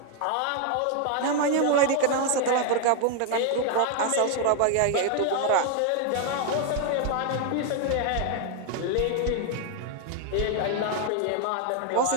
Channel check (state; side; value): different; both; correlation 0.01